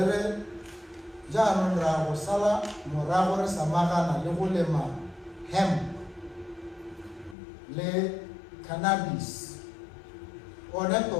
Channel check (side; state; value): right; drops out; at 7.4 s